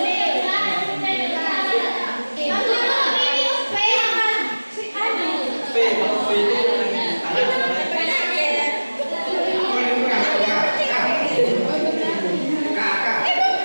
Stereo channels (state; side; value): inverted; both; correlation -1.00